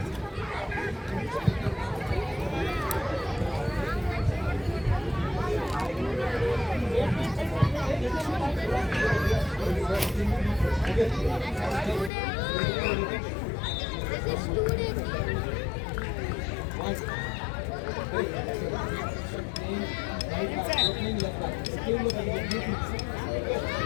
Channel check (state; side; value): drops out; right; at 12.1 s